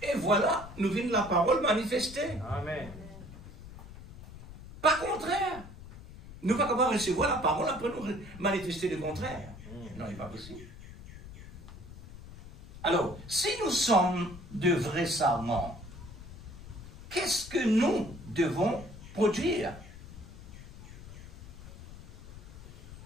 Et voilà, nous venons la parole manifester. Amen. Pas contraire. Nous ne pouvons pas capable de recevoir la parole après nous manifester le contraire. Non, il n'est pas possible. Alors, si nous sommes de vrais serments, qu'est-ce que nous devons produire?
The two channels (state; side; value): noise; left; rumble, 15 dB below the sound